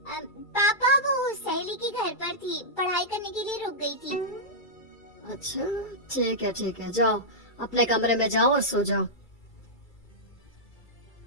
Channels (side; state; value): right; late; 2.3 ms